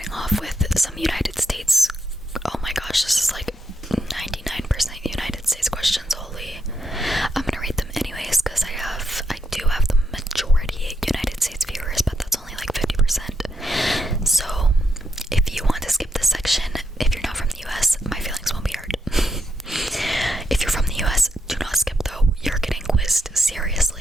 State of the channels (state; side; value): normal; both; correlation 0.82